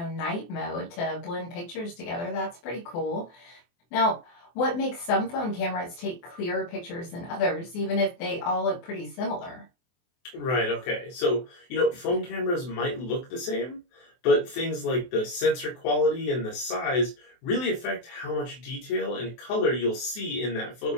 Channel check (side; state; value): right; late; 23 ms